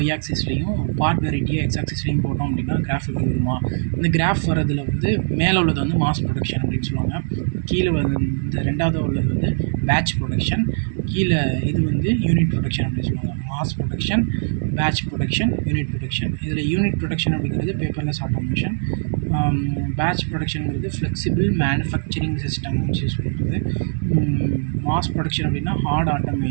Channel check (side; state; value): left; silent; digital silence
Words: ஆக்சிஸ்லேயும் பார்ட் வெரைட்டியை எக்ஸ் ஆக்சிஸ்லேயும் போட்டோம் அப்படின்னா கிராஃப் எப்படி வருமா? இந்த கிராஃப் வரதில் வந்து மேலே உள்ளது வந்து மாஸ் ப்ரொடக்ஷன் அப்படின்னு சொல்லுவாங்க. கீழே வந்து இந்த ரெண்டாவது உள்ளது வந்து பேட்ச் ப்ரொடக்ஷன், கீழே இது வந்து யூனிட் ப்ரொடக்ஷன் அப்படின்னு சொல்லுவாங்க. Mass production, batch production, unit production. இதில் யூனிட் ப்ரொடக்ஷன் அப்படிங்கிறது பேப்பர்லெஸ் ஆட்டோமேஷன், பேட்ச் ப்ரொடக்ஷனுங்கிறது ஃப்ளெக்சிபிள் மேனுஃபேக்சரிங் சிஸ்டம் யூஸ் பண்ணுறது, மாஸ் ப்ரொடக்ஷன் அப்படின்னா ஹார்ட்